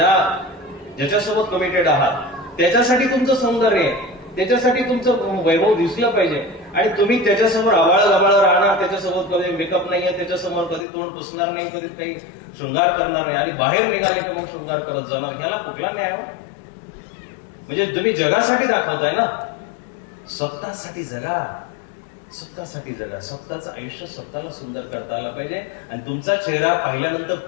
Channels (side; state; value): right; drops out; at 10.9 s